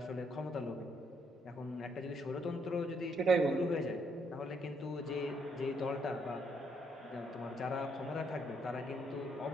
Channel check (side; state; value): both; normal; correlation 0.72